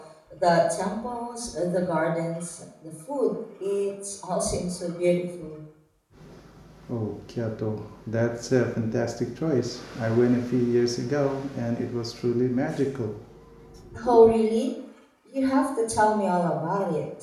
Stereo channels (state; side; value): identical; both; correlation 1.00